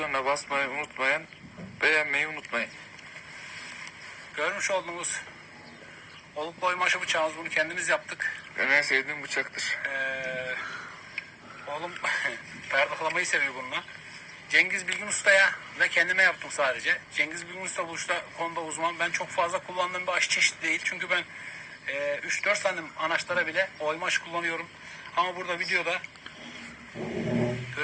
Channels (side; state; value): both; identical; correlation 1.00